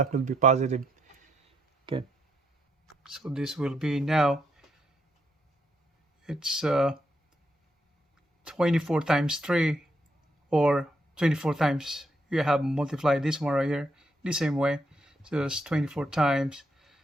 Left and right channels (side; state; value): both; normal; correlation 0.77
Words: will be positive. Okay. So this will be now, it's 24 times 3, or 24 times, you have multiplied this one right here the same way. So it's 24 times